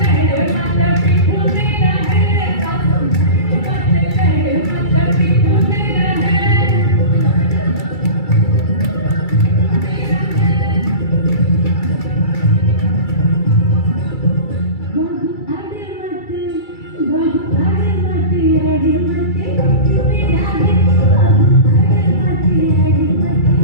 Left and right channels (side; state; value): right; late; 2.3 ms